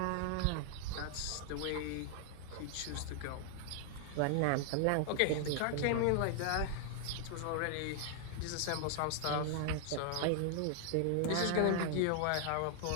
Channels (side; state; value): both; different; correlation 0.00